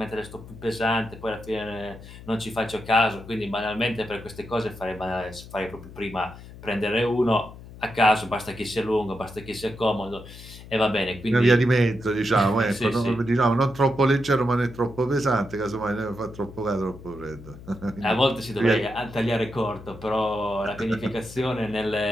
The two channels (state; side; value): noise; left; hum, 16 dB below the sound